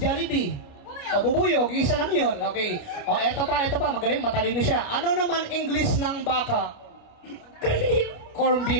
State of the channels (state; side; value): late; right; 29 ms